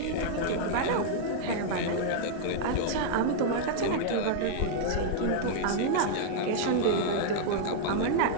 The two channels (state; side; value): different; both; correlation -0.01